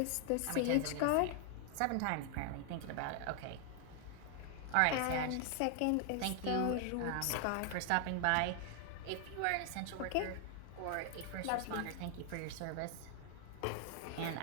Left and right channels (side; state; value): both; different; correlation 0.00